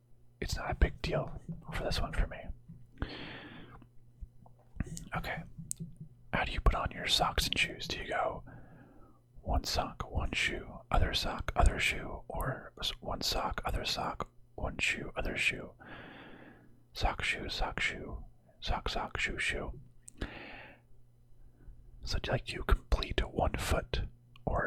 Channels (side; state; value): both; identical; correlation 1.00